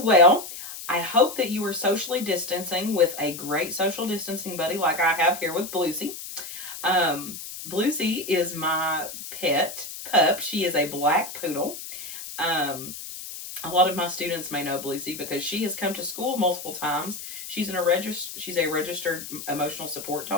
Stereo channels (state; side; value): noise; left; hiss, 10 dB below the sound